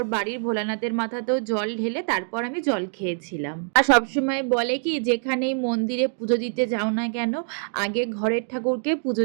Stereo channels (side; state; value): left; silent; 57 dB below the other